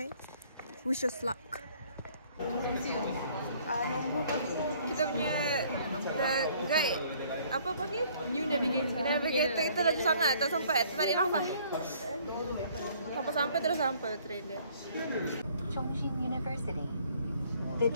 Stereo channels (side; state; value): both; inverted; correlation -0.60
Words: Wish us luck. Nombor kita punya guide apa panggil? New navigator. Navigator kita laju sangat, tak sampai. Terbalik nafas. Sampai terus sampai train dia. Chongqing University. The